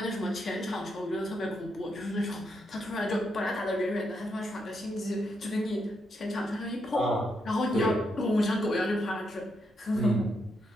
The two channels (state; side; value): normal; both; correlation 0.80